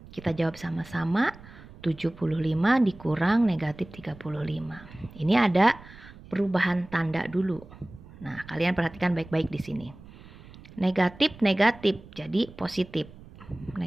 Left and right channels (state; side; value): noise; right; rumble, 20 dB below the sound